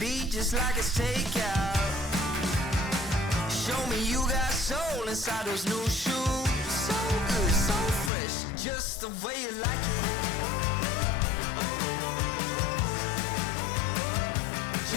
just like it's takeout. Show me you got soul inside those new shoes. So good, so fresh, just the way you like it.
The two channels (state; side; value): drops out; right; at 8.1 s